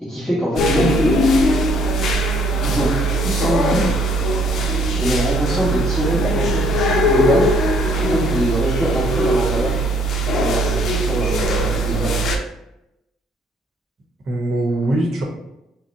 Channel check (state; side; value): normal; both; correlation 0.64